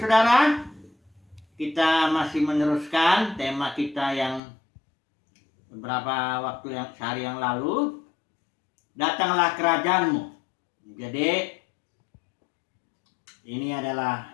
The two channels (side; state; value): right; drops out; at 4.4 s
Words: Kita masih meneruskan tema kita yang beberapa waktu sehari yang lalu. Datanglah kerajaanmu. Jadi ini